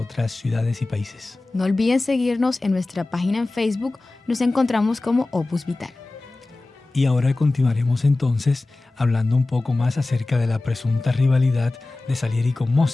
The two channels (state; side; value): quieter; right; 3.1 dB